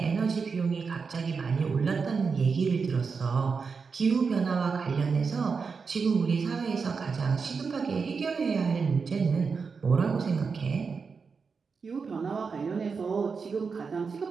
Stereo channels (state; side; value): quieter; left; 5.2 dB